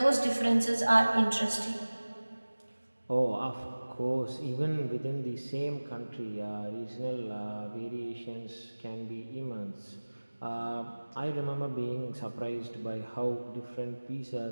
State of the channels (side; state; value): both; inverted; correlation -1.00